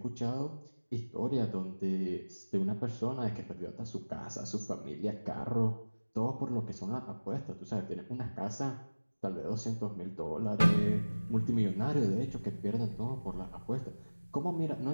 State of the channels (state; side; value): inverted; both; correlation -1.00